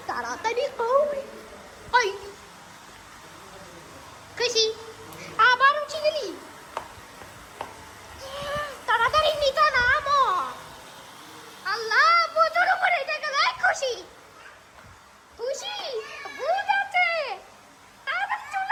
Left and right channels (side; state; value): both; identical; correlation 1.00